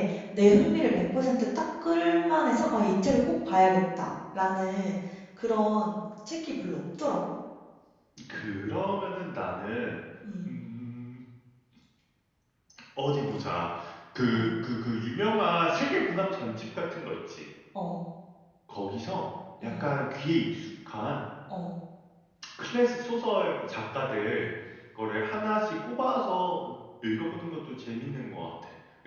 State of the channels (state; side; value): identical; both; correlation 1.00